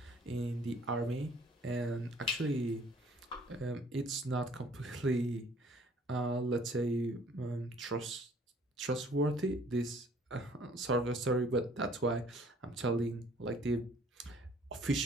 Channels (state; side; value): normal; both; correlation 0.57